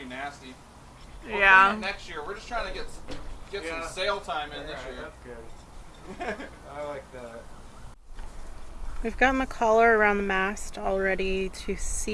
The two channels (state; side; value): identical; both; correlation 1.00